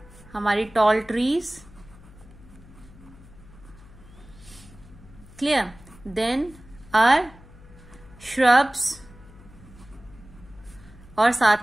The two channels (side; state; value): left; noise; hum, 21 dB below the sound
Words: हमारी tall trees, clear, then are shrubs, और